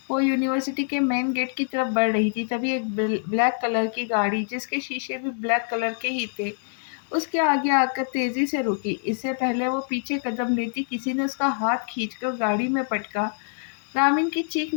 وہ یونیورسٹی کے مین گیٹ کی طرف بڑھ رہی تھی، تبھی ایک بلیک کلر کی گاڑی، جس کے شیشے بھی بلیک کلر کے ہی تھے، اس کے آگے آ کر تیزی سے رکی۔ اس سے پہلے وہ پیچھے قدم لیتی، کسی نے اس کا ہاتھ کھینچ کر گاڑی میں پٹکا۔ رامین کی چیخ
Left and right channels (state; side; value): silent; right; digital silence